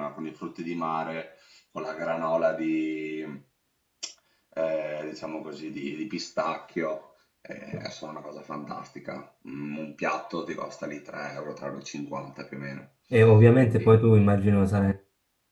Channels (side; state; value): both; identical; correlation 1.00